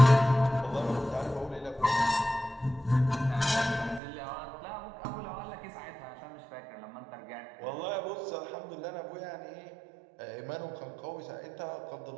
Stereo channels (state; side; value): drops out; left; at 4.0 s